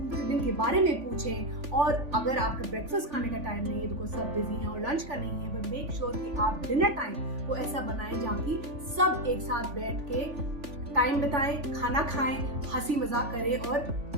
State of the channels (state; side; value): late; left; 3.5 ms